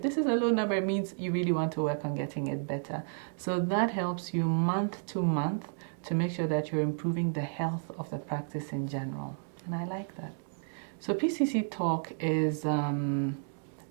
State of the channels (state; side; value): silent; left; digital silence